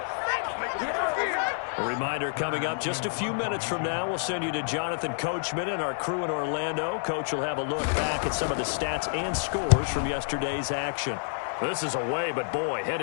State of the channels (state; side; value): silent; right; digital silence